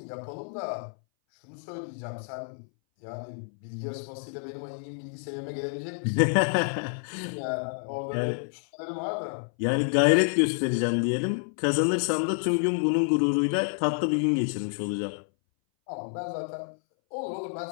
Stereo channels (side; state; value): right; silent; 59 dB below the other